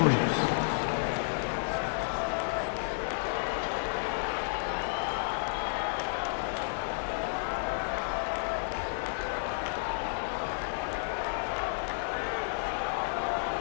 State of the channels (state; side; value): silent; right; digital silence